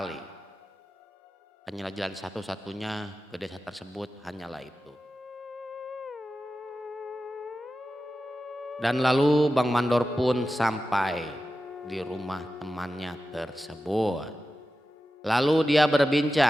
Hanyalah jalan satu-satunya ke desa tersebut hanyalah itu. Dan lalu Bang Mandor pun sampai di rumah temannya tersebut. Lalu dia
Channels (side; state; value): both; normal; correlation 0.93